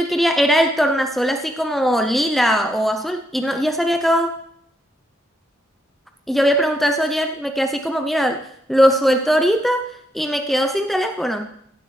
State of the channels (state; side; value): normal; both; correlation 0.78